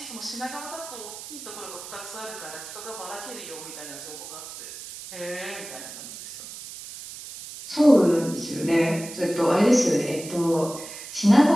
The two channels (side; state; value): right; noise; hiss, 12 dB below the sound